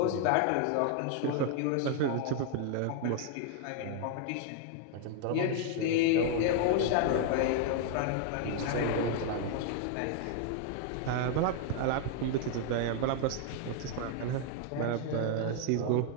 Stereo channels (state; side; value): different; both; correlation 0.00